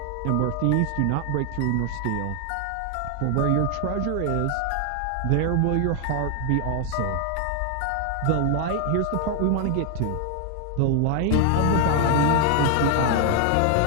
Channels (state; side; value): different; both; correlation 0.00